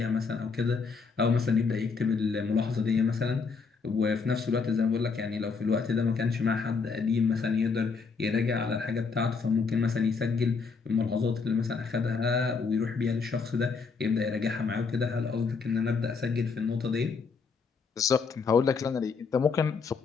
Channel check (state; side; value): quieter; right; 5.0 dB